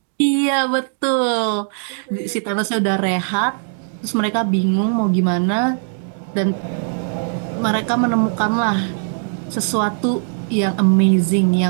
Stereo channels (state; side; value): silent; left; digital silence